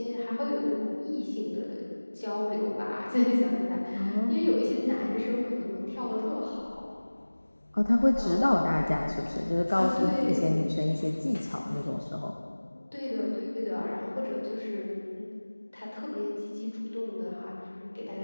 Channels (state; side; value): inverted; both; correlation -1.00